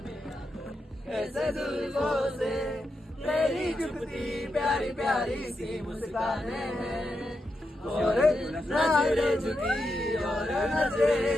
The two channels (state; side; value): normal; both; correlation 0.86